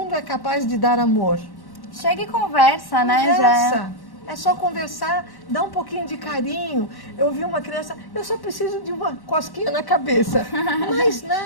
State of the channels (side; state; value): right; late; 1.1 ms